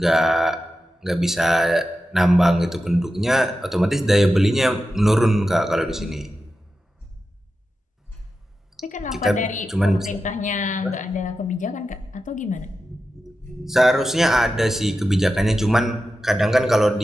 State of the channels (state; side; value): normal; both; correlation 0.91